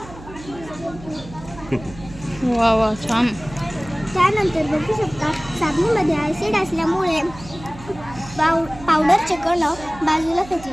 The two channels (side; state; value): right; noise; hum, 17 dB below the sound